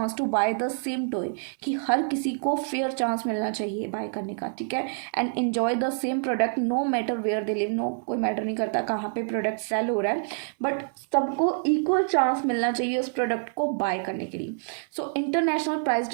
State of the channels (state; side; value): silent; left; 56 dB below the other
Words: to buy the same toy, कि हर किसी को फेयर चांस मिलना चाहिए बाय करने का, ठीक है, and enjoy the same product no matter where they live, no कोई मैटर नहीं करता कहाँ पे प्रोडक्ट सेल हो रहा है, बट सबको इक्वल चांस मिलना चाहिए उस प्रोडक्ट को बाय करने के लिए। सो इंटरनेशनल प्राइस